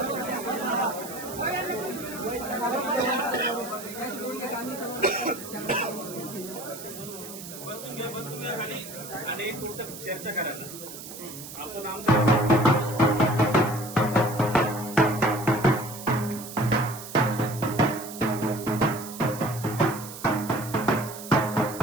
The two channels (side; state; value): right; noise; hiss, 12 dB below the sound